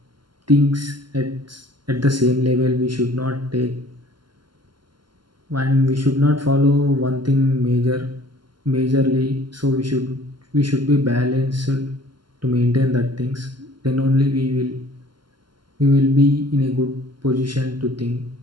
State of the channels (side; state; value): left; late; 0.71 ms